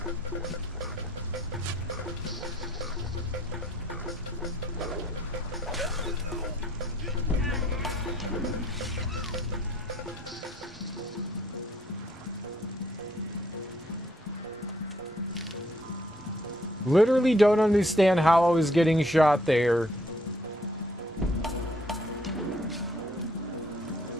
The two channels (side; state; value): both; normal; correlation 0.65